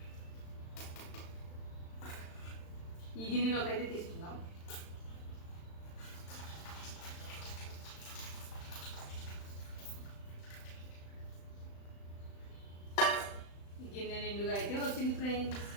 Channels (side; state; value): right; late; 35 ms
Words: ఈ గిన్నెలోకి అయితే తీసుకుందాం. ఈ గిన్నె నిండుగా అయితే వచ్చింది ఫ్రెండ్స్.